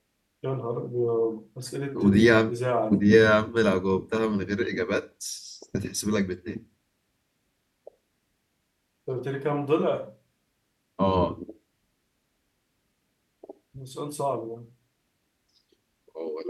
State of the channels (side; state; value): both; identical; correlation 1.00